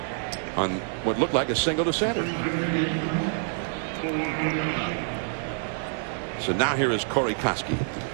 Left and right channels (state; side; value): silent; left; digital silence